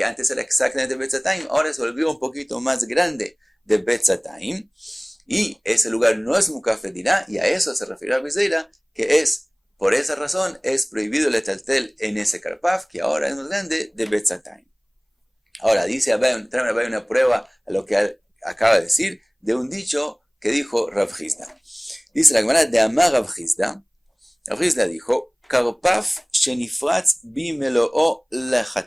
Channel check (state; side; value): identical; both; correlation 1.00